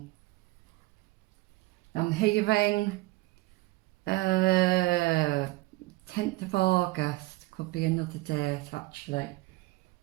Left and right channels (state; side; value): quieter; left; 20.6 dB